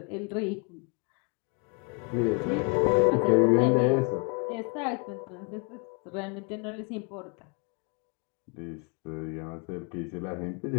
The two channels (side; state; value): right; quieter; 35.0 dB